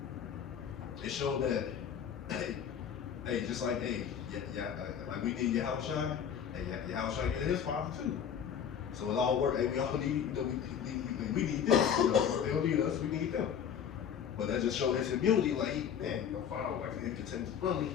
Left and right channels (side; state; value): right; quieter; 8.2 dB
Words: It showed that, hey, just like, hey, like we need Yahushua, hey, Yahushua needed his Father too. So it all worked. Hey, we all need, you know, we need them. You know, they don't need us, we need them. But that just showed his humility, like, man, you know, Father, like, he continues to run me.